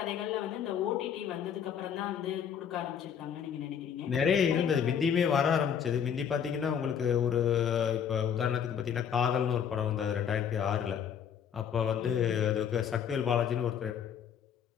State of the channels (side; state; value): right; quieter; 8.0 dB